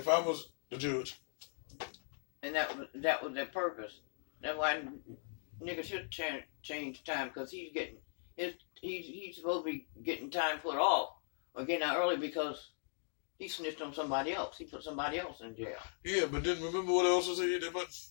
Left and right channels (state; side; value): silent; right; 52 dB below the other